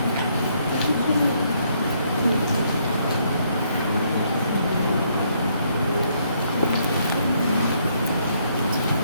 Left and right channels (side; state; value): both; inverted; correlation -0.71